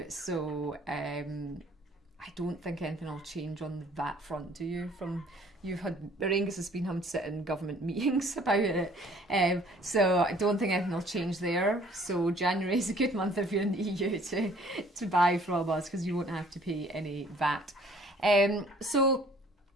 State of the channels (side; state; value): both; normal; correlation 0.56